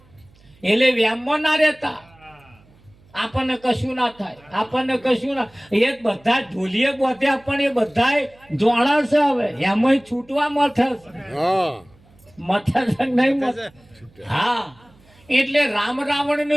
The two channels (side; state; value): right; noise; hum, 29 dB below the sound